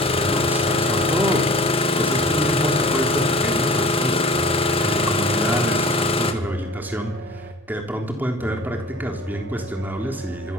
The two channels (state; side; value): normal; both; correlation 0.43